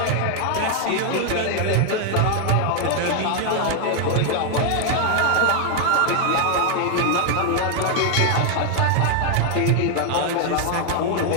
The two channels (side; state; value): both; different; correlation 0.01